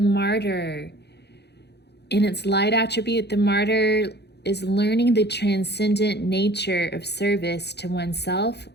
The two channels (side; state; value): right; late; 0.48 ms